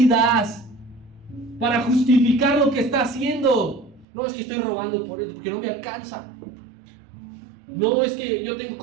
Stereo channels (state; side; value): drops out; left; at 4.0 s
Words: para justificar lo que está haciendo. No, es que estoy robando por él, porque no me alcanza. No, es que yo tengo